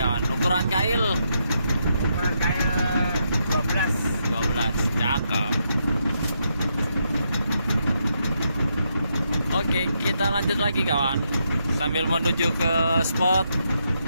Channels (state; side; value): inverted; both; correlation -0.80